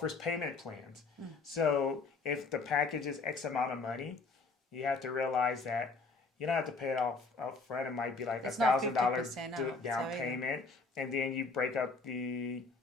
payment plans. So if the package is X amount of money, you have to realize that you don't have to pay it off up front. It might be like $1,000 down payment, and then you break up the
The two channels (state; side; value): quieter; right; 4.0 dB